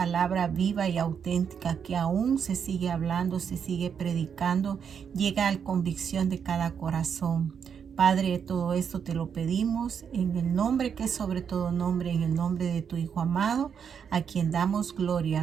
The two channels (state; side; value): quieter; left; 7.3 dB